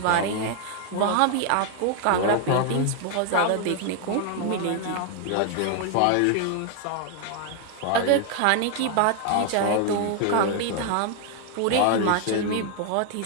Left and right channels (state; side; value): different; both; correlation 0.00